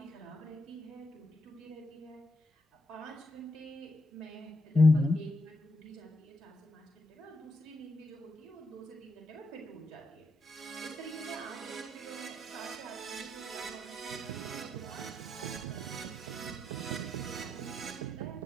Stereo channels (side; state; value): both; normal; correlation 0.82